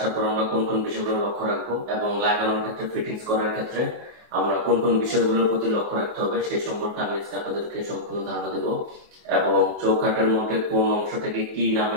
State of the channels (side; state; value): left; late; 24 ms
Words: পর আমরা কোন কোন বিষয়গুলো লক্ষ্য রাখবো এবং লাগানোর ক্ষেত্রে, ফিটিংস করার ক্ষেত্রে আমরা কোন কোন বিষয়গুলোর প্রতি লক্ষ্য রাখতে হবে সেই সম্পর্কে আমি আজকে আপনাদেরকে সম্পূর্ণ ধারণা দেব। এবং চৌকাঠের মধ্যে কোন অংশটাকে কি নামে